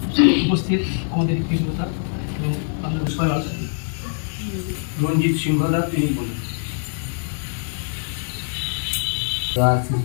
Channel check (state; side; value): silent; right; digital silence